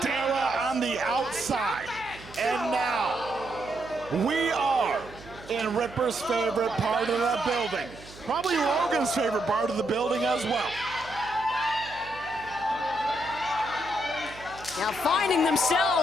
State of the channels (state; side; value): noise; right; hum, 18 dB below the sound